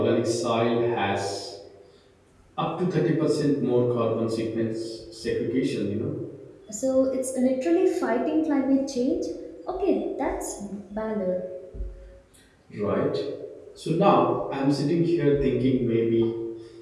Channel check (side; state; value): both; identical; correlation 1.00